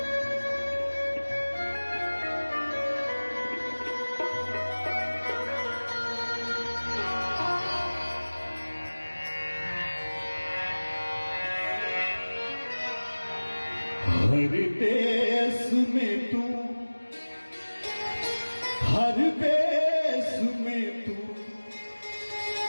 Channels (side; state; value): both; inverted; correlation -1.00